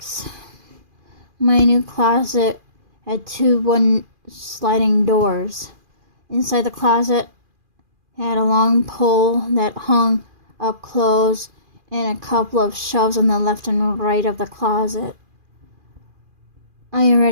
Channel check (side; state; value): left; late; 2.4 ms